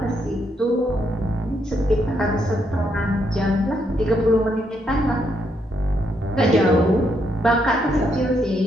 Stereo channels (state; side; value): normal; both; correlation 0.77